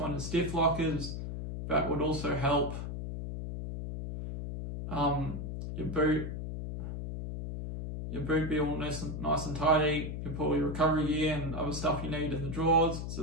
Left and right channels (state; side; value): noise; left; hum, 5 dB below the sound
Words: is stiff lockers. That would also help your boot be all nice and tidy. You put all your recovery gear and other stuff you need in the drawers.